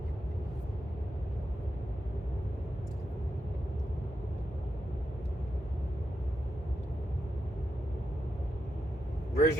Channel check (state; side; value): normal; both; correlation 0.86